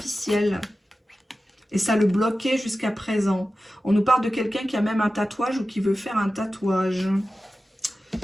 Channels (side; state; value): both; normal; correlation 0.94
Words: Et ça le bloquait jusqu'à présent. On nous parle de quelqu'un qui a même un tatouage ou qui veut faire un tatouage.